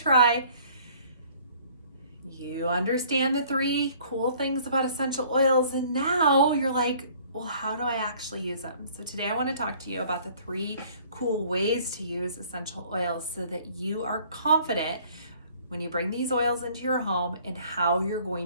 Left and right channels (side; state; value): both; inverted; correlation -0.55